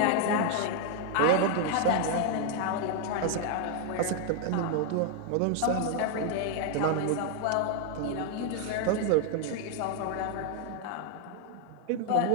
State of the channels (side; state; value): both; different; correlation 0.00